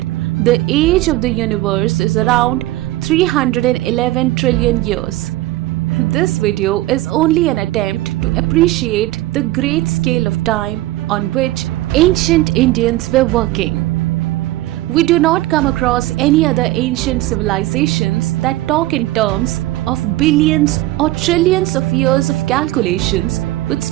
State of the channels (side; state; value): left; quieter; 17.1 dB